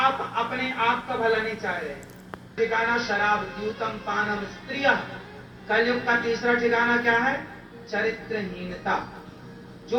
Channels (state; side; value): identical; both; correlation 1.00